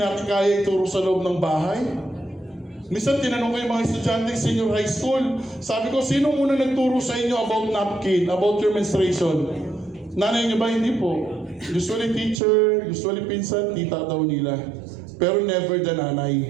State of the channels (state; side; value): drops out; left; at 12.4 s